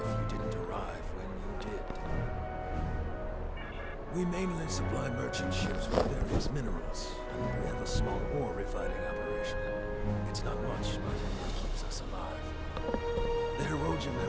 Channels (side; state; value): both; identical; correlation 1.00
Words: you didn't arrive when you did. We mainly supply merchant ships with various minerals, and we have a small ore refining operation. It's not much, but it keeps us alive. The Erogen